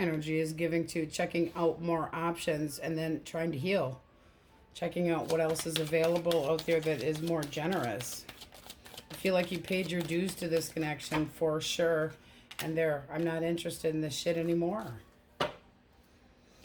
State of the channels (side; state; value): both; identical; correlation 1.00